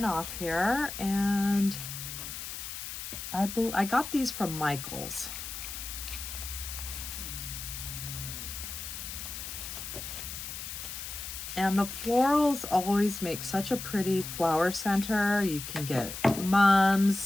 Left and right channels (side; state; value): left; noise; hiss, 8 dB below the sound